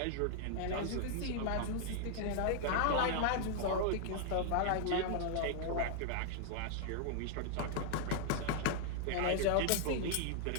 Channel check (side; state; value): both; different; correlation -0.01